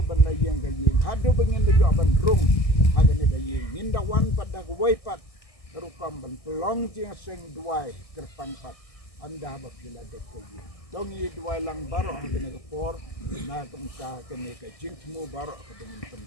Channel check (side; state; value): right; late; 1.6 ms